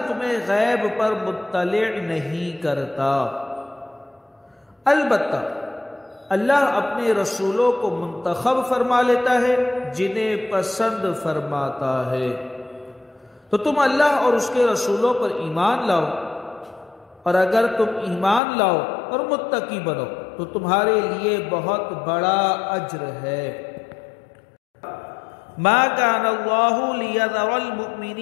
تمہیں غیب پر مطلع نہیں کرتا، البتہ اللہ اپنے رسولوں کو منتخب فرما لیتا ہے جنہیں پسند فرماتا ہے۔ تو تم اللہ اور اس کے رسولوں پر ایمان لاؤ، اور اگر تم ایمان لاؤ اور متقی بنو تو تمہارے لیے بہت بڑا اجر ہے۔ ما كان الله ليذر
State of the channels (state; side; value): drops out; right; at 18.4 s